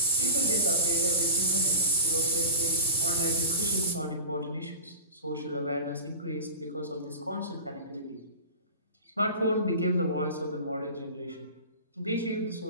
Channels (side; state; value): both; inverted; correlation -0.34